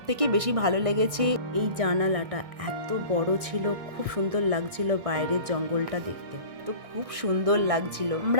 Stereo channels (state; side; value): late; left; 1.6 ms